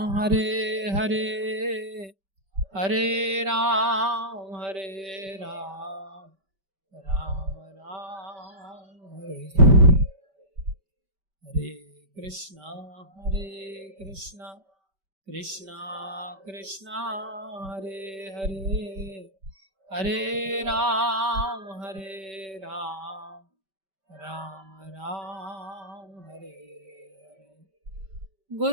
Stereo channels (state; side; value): late; left; 5.2 ms